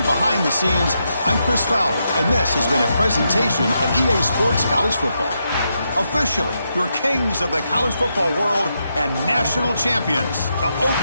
behind the scenes, I'm Chris Fowler, and this has been a presentation of EA Sports College Football. Officially, your kings of the college football world and national champions, the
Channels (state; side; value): inverted; both; correlation -0.83